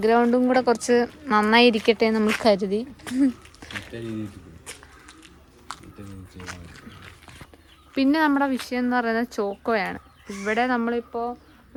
കൂടെ കുറച്ച് നന്നായി ഇരിക്കട്ടെ നമ്മൾ കരുതി. പിന്നെ നമ്മുടെ വിഷയം എന്ന് പറയുന്നത് ചോക്കോയാണ്. ഇവിടെ നമ്മളിപ്പോൾ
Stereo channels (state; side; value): identical; both; correlation 1.00